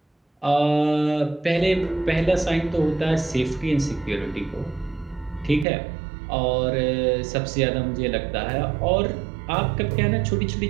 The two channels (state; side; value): drops out; left; at 5.7 s